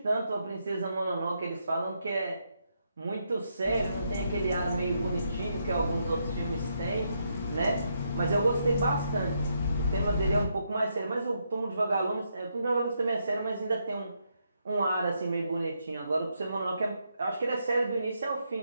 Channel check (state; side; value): inverted; both; correlation -0.79